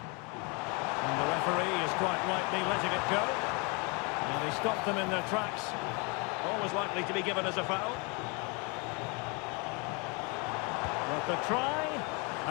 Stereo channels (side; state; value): right; quieter; 31.4 dB